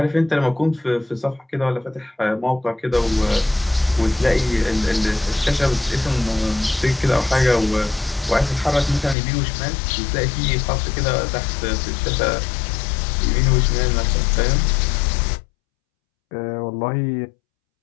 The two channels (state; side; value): drops out; right; at 9.2 s